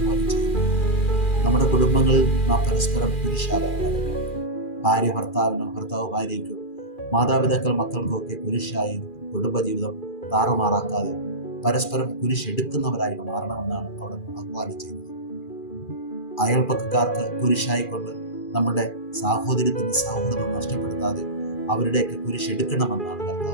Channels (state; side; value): late; right; 2.4 ms